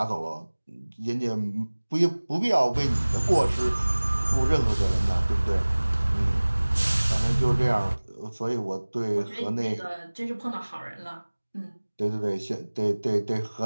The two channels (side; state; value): both; inverted; correlation -1.00